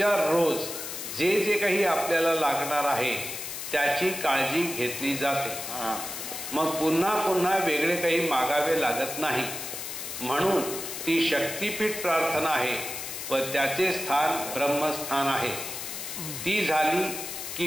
रोज जे जे काही आपल्याला लागणार आहे त्याची काळजी घेतली जाते. मग पुन्हा पुन्हा वेगळे काही मागावे लागत नाही. म्हणून ती शक्तिपीठ प्रार्थना आहे व त्याचे स्थान ब्रह्मस्थान आहे. ती झाली की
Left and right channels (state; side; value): noise; left; hiss, 7 dB below the sound